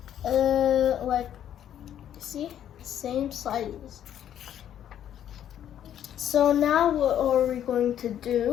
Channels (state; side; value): quieter; right; 10.4 dB